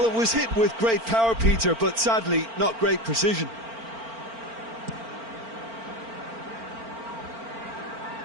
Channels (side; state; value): left; late; 4.4 ms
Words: it was hit with great power, Peter, but sadly not great precision.